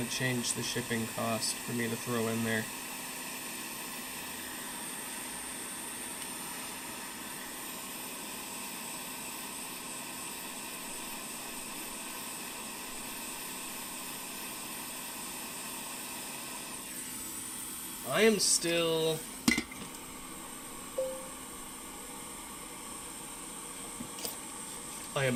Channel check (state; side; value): identical; both; correlation 1.00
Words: to change the shipping cost for me to throw in there. I am still... I